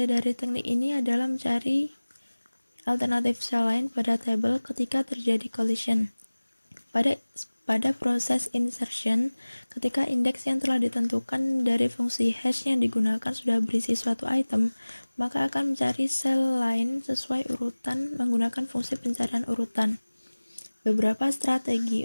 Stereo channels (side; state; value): both; inverted; correlation -1.00